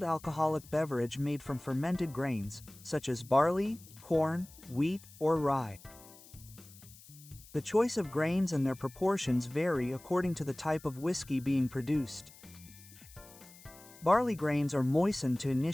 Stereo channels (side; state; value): left; noise; hiss, 21 dB below the sound